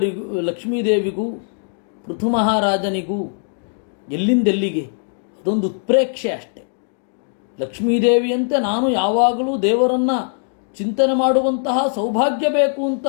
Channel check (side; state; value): right; silent; digital silence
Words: ಲಕ್ಷ್ಮೀದೇವಿಗೂ ಪೃಥು ಮಹಾರಾಜನಿಗೂ ಎಲ್ಲಿಂದೆಲ್ಲಿಗೆ ಅದೊಂದು ಉತ್ಪ್ರೇಕ್ಷೆ ಅಷ್ಟೆ. ಲಕ್ಷ್ಮೀದೇವಿಯಂತೆ ನಾನು ಯಾವಾಗಲೂ ದೇವರನ್ನು ಚಿಂತನೆ ಮಾಡುವಂತಹ ಸೌಭಾಗ್ಯ ಬೇಕು ಅಂತ